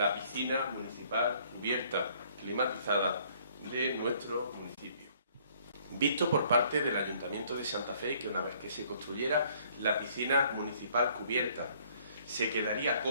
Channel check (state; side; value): inverted; both; correlation -0.61